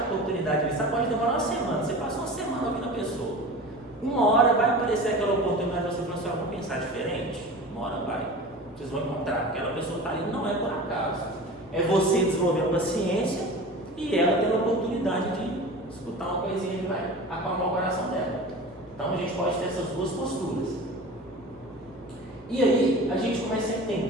oportunidade ali. Sabe? Pode demorar uma semana. Você passa uma semana ouvindo a pessoa. Uma hora vai aparecer aquela oportunidade, você fala assim, vou pensar diferente. Uma hora vai. Vocês vão encontrar. Aquela pessoa está ali, não é por acaso. É você desenvolvendo paciência e ela tendo a oportunidade de escutar uma coisinha que vai acalmar o coração dela. Então a gente pode ter essas duas posturas. E aí a gente começa a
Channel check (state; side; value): normal; both; correlation 0.35